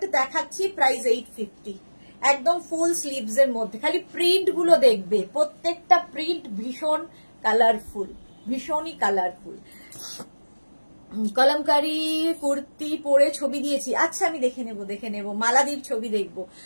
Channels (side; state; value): both; inverted; correlation -1.00